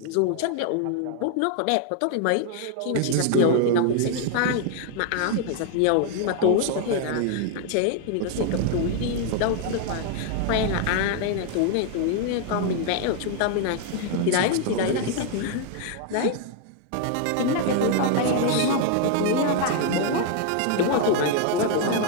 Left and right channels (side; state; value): both; different; correlation 0.00